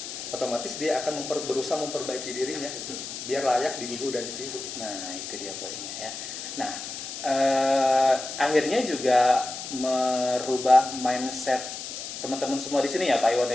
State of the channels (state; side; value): noise; left; hiss, 8 dB below the sound